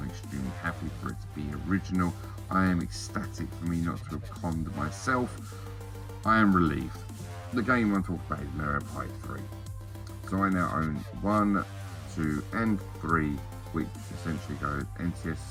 extremely happy for it to be original. I am ecstatic for me not to have conned myself. I am relieved. The game I'm talking about is Mario Party 3. So I now own 1, 2 and 3, which essentially goes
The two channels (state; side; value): identical; both; correlation 1.00